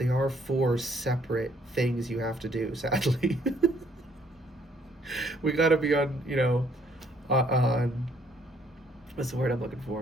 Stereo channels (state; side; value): normal; both; correlation 0.66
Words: are four separate things you have to do, sadly. We got to be on, on, what's the word I'm looking